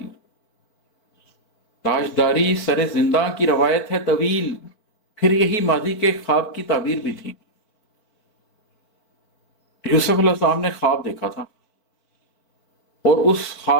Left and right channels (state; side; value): late; right; 4.5 ms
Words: تاجداری سرے زندہ کی روایت ہے طویل، پھر یہی ماضی کے خواب کی تعبیر بھی تھی. یوسف علیہ السلام نے خواب دیکھا تھا اور اس